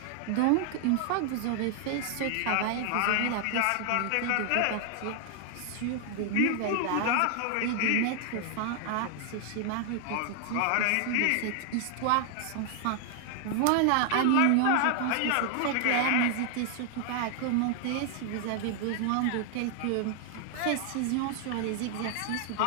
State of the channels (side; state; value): both; different; correlation 0.00